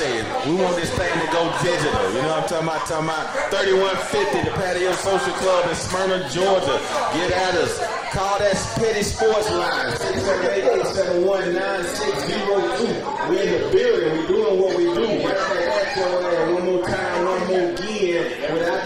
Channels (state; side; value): identical; both; correlation 1.00